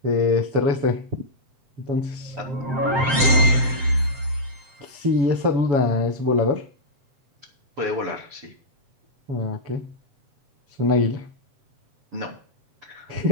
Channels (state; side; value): late; left; 7.6 ms